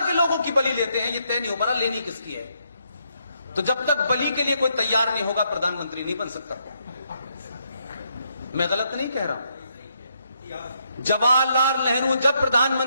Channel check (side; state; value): both; inverted; correlation -0.76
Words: के लोगों की बलि लेते हैं। ये तय नहीं हो पा, लेनी किसकी है। तो जब तक बलि के लिए कोई तैयार नहीं होगा प्रधानमंत्री नहीं बन सकता। मैं गलत नहीं कह रहा हूं। जवाहरलाल नेहरू जब